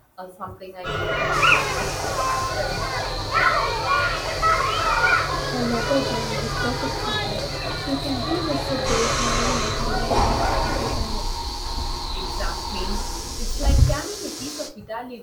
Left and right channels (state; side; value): identical; both; correlation 1.00